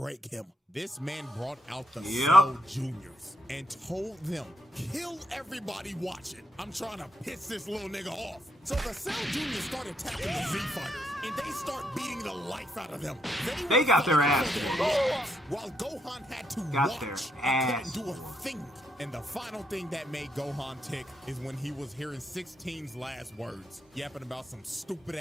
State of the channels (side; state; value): both; normal; correlation 0.76